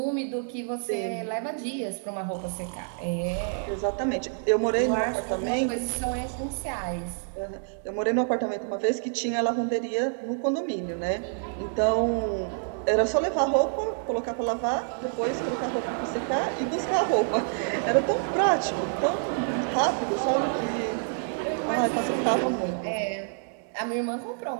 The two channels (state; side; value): silent; left; 60 dB below the other